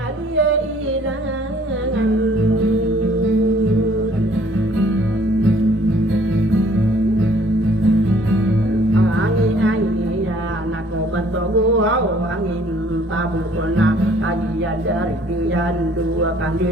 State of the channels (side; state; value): both; normal; correlation 0.58